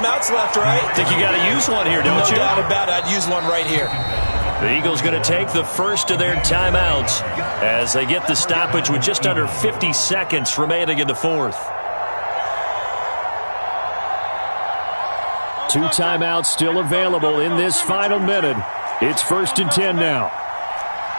left, right? Think you got to use one here, don't you? No doubt about it. I'd use one right here. The Eagles going to take the first of their timeouts as they get the stoppage with just under 50 seconds remaining in the fourth. 2 timeouts still available in this final minute. It's 1st and 10 now.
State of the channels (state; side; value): inverted; both; correlation -1.00